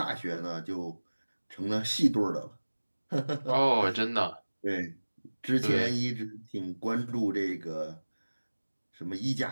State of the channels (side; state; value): both; inverted; correlation -1.00